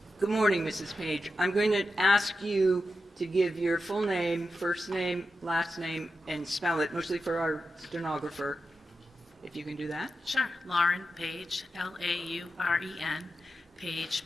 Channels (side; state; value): both; normal; correlation 0.89